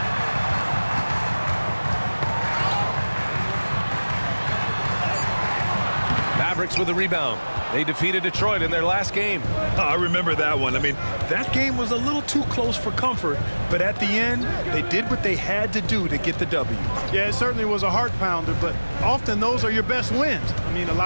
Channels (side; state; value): both; inverted; correlation -1.00